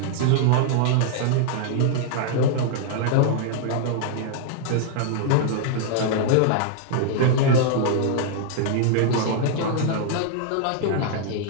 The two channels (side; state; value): both; different; correlation -0.01